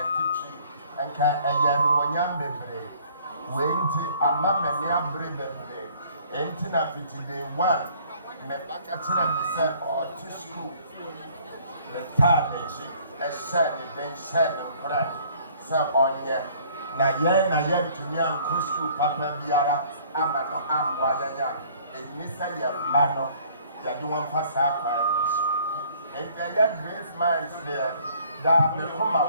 Tichi, and can a young baby. Wait a mamma near Brebe. Ain't enough day one. Me bakatina me say or to school me time a said then said brand say onye na ye to me an school papa biara ama no amwa ya eni say ye ma no ya do wan fasa kwa And there are great minds there that may come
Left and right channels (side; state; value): both; inverted; correlation -0.57